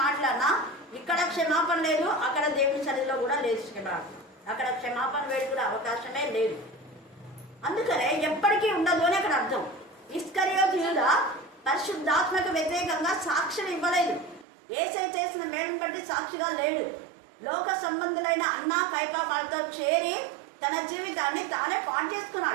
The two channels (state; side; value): drops out; left; at 14.5 s